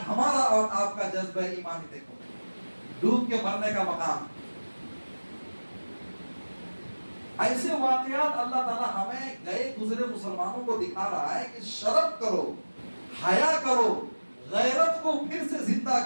ہمارا اور آپ کا جذبہ ایمانی دیکھو، ڈوب کے مرنے کا مقام۔ ایسے واقعات اللہ تعالیٰ ہمیں گئے گزرے مسلمانوں کو دکھا رہا ہے کہ شرم کرو، حیا کرو، غیرت کو پھر سے زندہ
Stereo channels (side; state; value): both; inverted; correlation -1.00